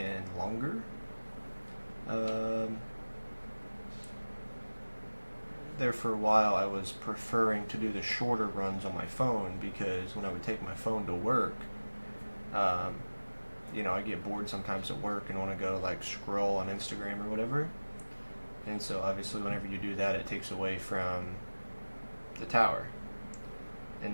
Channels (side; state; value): both; inverted; correlation -1.00